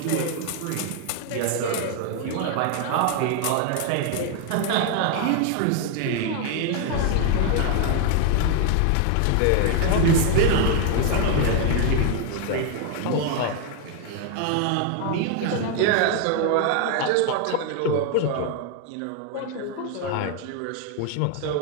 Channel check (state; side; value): different; both; correlation 0.00